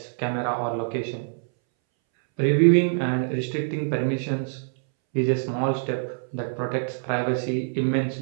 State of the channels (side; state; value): left; silent; 62 dB below the other